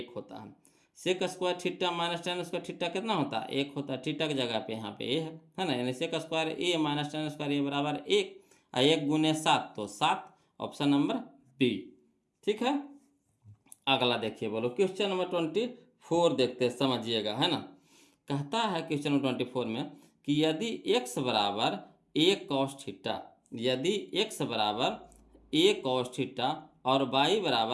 होता है। Sec square theta minus tan square theta कितना होता है 1 होता है। थीटा की जगह पे यहाँ पे ए है ना, यानी सेक square A minus tan square ए बराबर 1, 1 गुने 7 तो 7, ऑप्शन नंबर बी। ठीक है। अगला देखिए बोलो क्वेश्चन नंबर 24 देखते हैं, समझिएगा, है ना। कहता है क्वेश्चन नंबर 24 में कि यदि x बराबर a कॉस थीटा, यदि x बराबर a कॉस थीटा और y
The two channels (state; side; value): identical; both; correlation 1.00